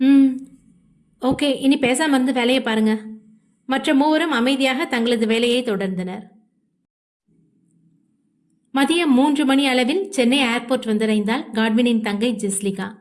ஓகே, இனி பேசாம இருந்து வேலையை பாருங்க. மற்ற மூவரும் அமைதியாக தங்களது வேலையை தொடர்ந்தனர். மதியம் 3 மணி அளவில் சென்னை ஏர்போர்ட் வந்தடைந்தாள் காட்வினின் தங்கை ஜெஸ்லிகா.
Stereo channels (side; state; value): both; identical; correlation 1.00